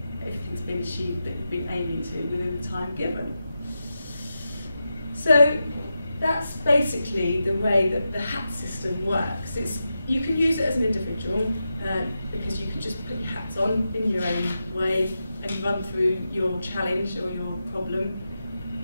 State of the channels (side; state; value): both; inverted; correlation -0.89